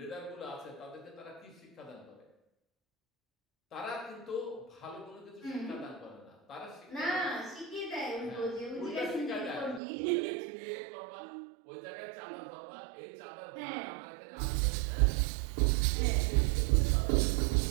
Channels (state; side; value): drops out; left; at 9.8 s